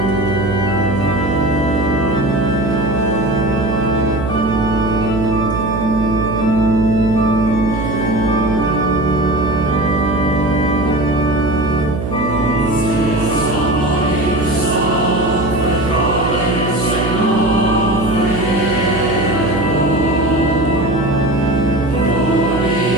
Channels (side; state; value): right; noise; hum, 4 dB below the sound